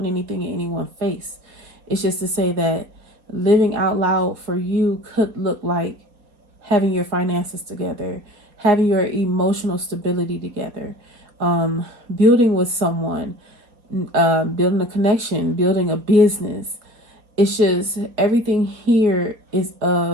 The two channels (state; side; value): late; left; 4.0 ms